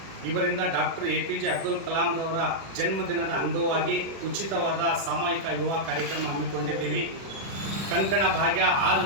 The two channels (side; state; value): left; late; 36 ms